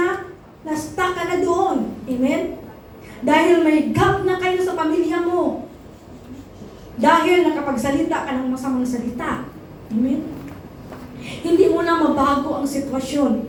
na-stuck ka na doon? Amen? Dahil may gap na kayo sa pamilya mo. Dahil nakapagsalita ka ng masamang salita. Amen? Hindi mo na mabago ang sitwasyon.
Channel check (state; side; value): identical; both; correlation 1.00